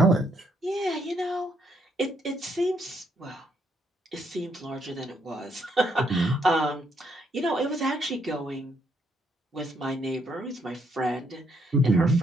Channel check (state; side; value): normal; both; correlation 0.73